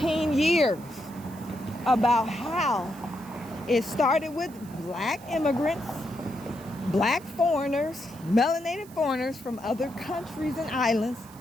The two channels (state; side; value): noise; right; hiss, 23 dB below the sound